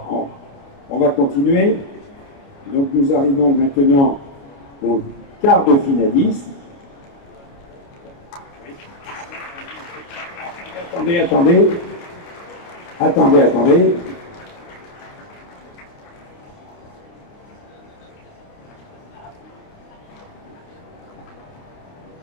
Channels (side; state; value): right; late; 29 ms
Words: on va continuer. Donc nous arrivons maintenant au quart de finaliste. Attendez.